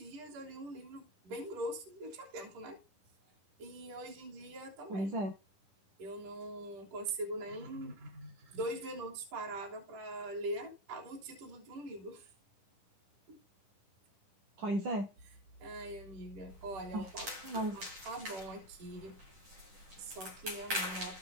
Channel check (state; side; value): late; left; 10 ms